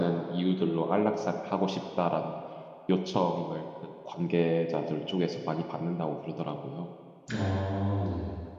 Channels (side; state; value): both; identical; correlation 1.00